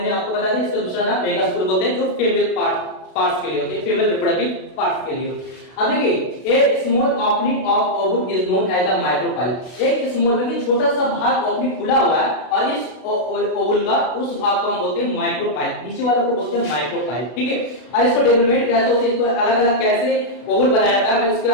आपको बताया था इसका दूसरा नाम मेगास्पोर बोलते हैं, जो फीमेल पार्ट्स के लिए होते हैं, फीमेल रिप्रोडक्टिव पार्ट्स के लिए। अब देखिए एक small opening of ovule is known as the micropyle. एक स्मॉल में छोटा सा भाग ओपनिंग खुला हुआ है और इस ओवल का उस भाग को हम बोलते हैं माइक्रोपाइल, नीचे वाले को बोलते हैं माइक्रोपाइल, ठीक है। और इसको डेवलपमेंट कैसे होती है, इसको अलग अलग कैसे ओवल बनाया जाता है, मैं इसके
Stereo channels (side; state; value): right; late; 32 ms